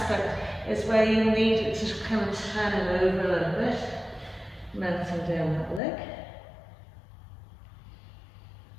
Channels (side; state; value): right; drops out; at 5.8 s